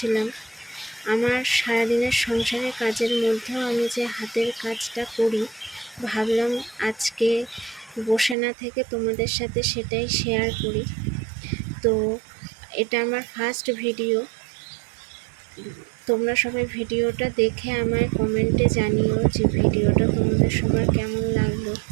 আমার সারাদিনের সংসারের কাজের মধ্যেও আমি যে হাতের কাজটা করি, ভাবলাম আজকে বসে না থেকে তোমাদের সাথে সেটাই শেয়ার করি। তো এটা আমার ফার্স্ট ভিডিও। তোমরা সবাই ভিডিওটা দেখে আমায় কমেন্টে জানিও যে ভিডিওটা তোমাদের সবার কেমন লাগলো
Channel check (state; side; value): drops out; left; at 8.3 s